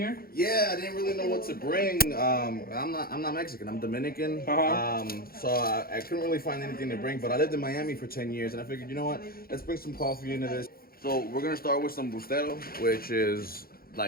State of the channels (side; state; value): right; late; 0.43 ms